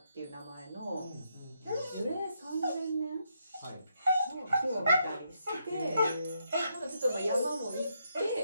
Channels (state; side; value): inverted; both; correlation -0.78